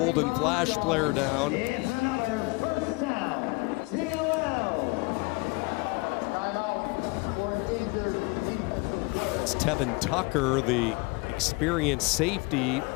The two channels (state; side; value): quieter; right; 26.6 dB